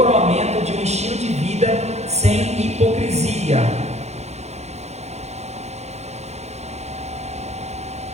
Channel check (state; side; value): late; left; 0.32 ms